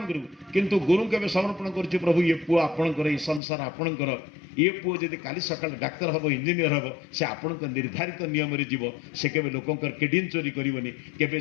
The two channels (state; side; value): drops out; right; at 3.4 s